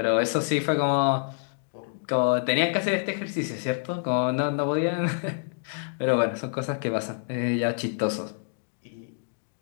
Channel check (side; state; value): right; silent; digital silence